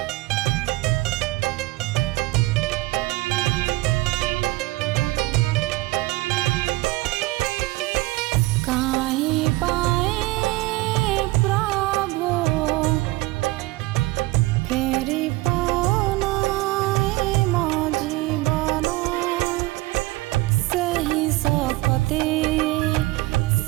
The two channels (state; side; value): quieter; left; 20.8 dB